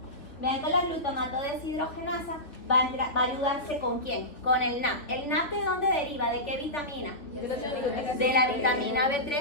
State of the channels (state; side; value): late; right; 3.6 ms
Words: Vean que la glutamato deshidrogenasa va a ayudarse ¿con quién? Con el NAP. ¿El NAP de dónde deriva? ¿De qué vitamina? De la vitamina